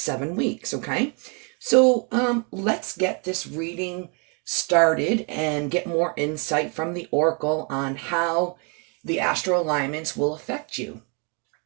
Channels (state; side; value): quieter; left; 35.9 dB